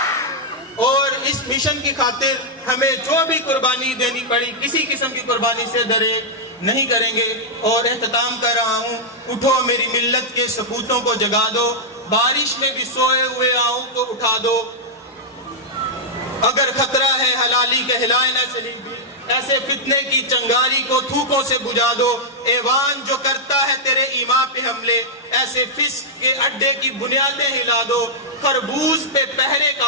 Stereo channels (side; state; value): both; normal; correlation -0.06